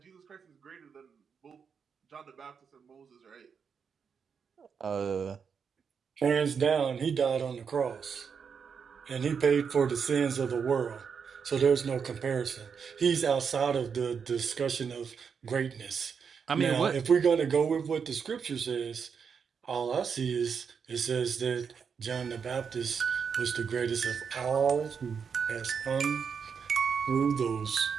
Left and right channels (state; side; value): quieter; left; 6.4 dB